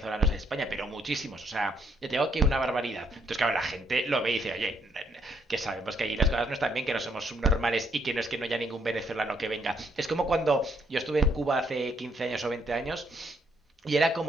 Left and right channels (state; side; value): normal; both; correlation 0.73